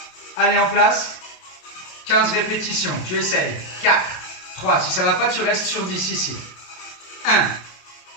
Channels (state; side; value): late; right; 27 ms